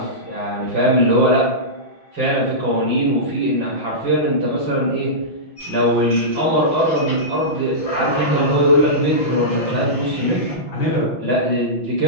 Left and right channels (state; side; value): late; right; 5.9 ms